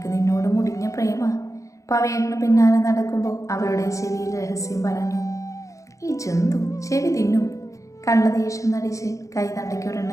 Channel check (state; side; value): late; right; 0.15 ms